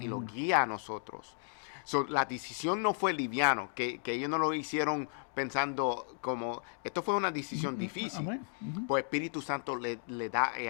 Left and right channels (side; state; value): right; silent; 55 dB below the other